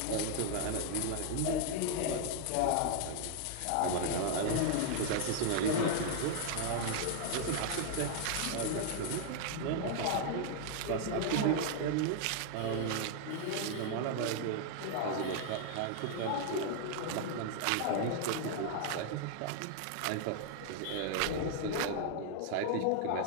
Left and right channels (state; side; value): different; both; correlation 0.00